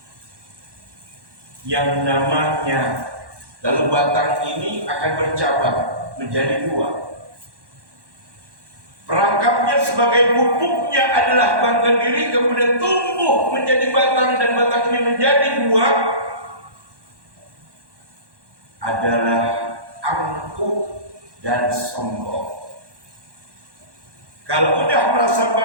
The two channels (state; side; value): late; left; 1.1 ms